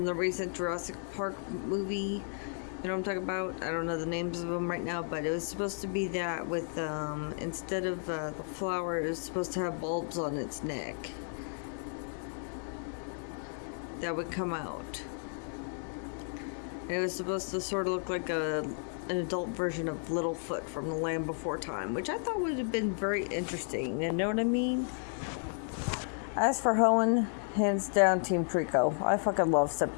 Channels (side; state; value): right; silent; 56 dB below the other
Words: the recent Jurassic Park movie. You know what I'm talking about? I don't know the names of them right now, but it was supposed to be that with, instead of the flower, it was supposed to have bulbs on its neck that would come out. And it was supposed to sort of look like an adult version of Littlefoot from The Land Before Time, which I thought would have been very interesting. You know what I mean? As for Hoenn, hands down Team Trico. I fucking love